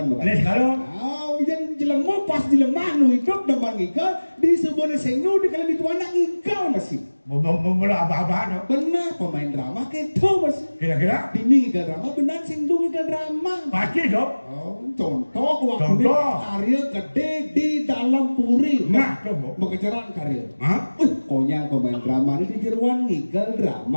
maka. Di sekala. Yang jelemu pas dilemah nu hidup deman igal di sebuah senu di kali dituan igal masih. Bola apa-apa Benar pemain drama gitu masih. Kira-kira. Dini igal drama benar singgung igal drama. Pasti dong. Contoh waktu karya gede di dalam puri. Nah, coba. Mengejaran karya. Hah? Konyang pemain drama ini di jeruan ngigal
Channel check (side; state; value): both; inverted; correlation -1.00